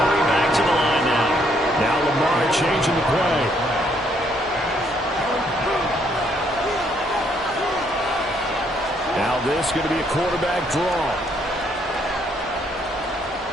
hurry back to the line now. Now Lamar changing the play. Now this is going to be a quarterback draw.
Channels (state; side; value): normal; both; correlation 0.70